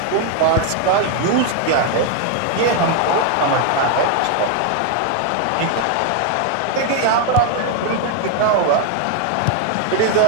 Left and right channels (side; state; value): both; different; correlation 0.01